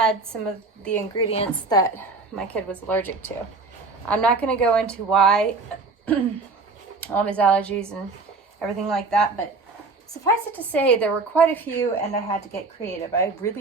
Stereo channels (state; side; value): quieter; left; 3.8 dB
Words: some of the ingredients that my kid was allergic to. I'm not going to go into why, all of his allergies and everything like that, but suffice it to say, there were quite a few, and I had to get creative. I